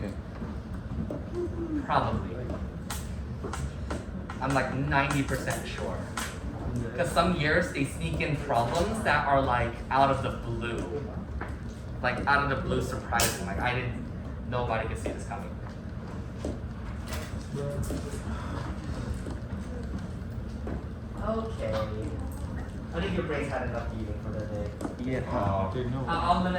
Probably. I'm like 90% sure. Because some years they sneak in problems that are like out of the blue. Like out of the blue surprising. Like nobody could see this coming. Okay. I think your brain's had enough eating for the day. Yeah. I'll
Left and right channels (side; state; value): both; identical; correlation 1.00